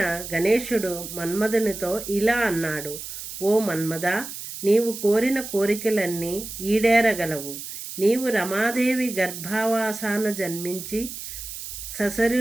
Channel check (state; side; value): noise; right; hiss, 10 dB below the sound